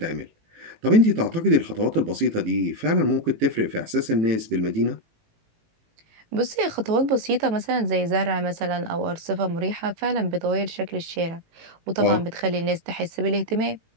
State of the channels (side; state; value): left; late; 18 ms